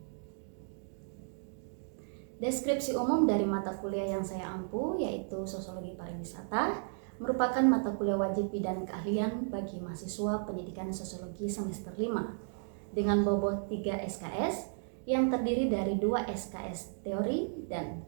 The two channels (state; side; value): silent; left; digital silence